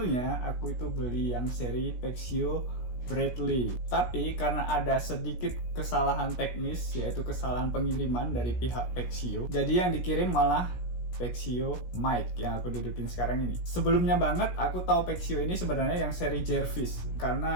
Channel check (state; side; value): late; right; 17 ms